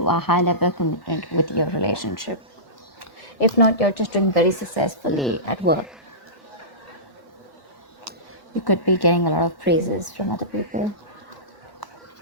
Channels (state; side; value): late; right; 1.1 ms